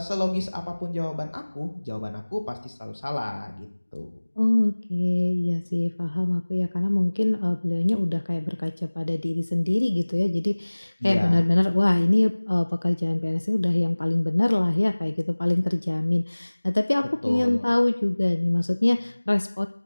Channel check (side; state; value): both; inverted; correlation -1.00